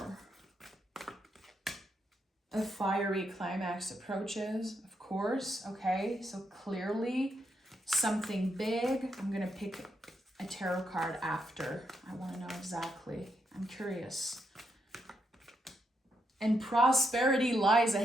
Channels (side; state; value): both; normal; correlation 0.80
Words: A fiery climax approaches, of course. Okay, so clearly something big. I'm going to pick a tarot card after. I want to know exactly. I'm curious. And prosperity lies